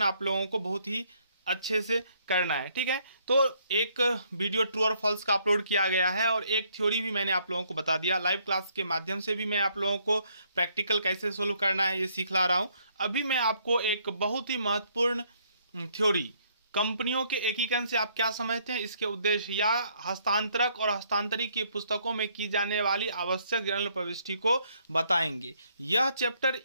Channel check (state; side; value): inverted; both; correlation -0.68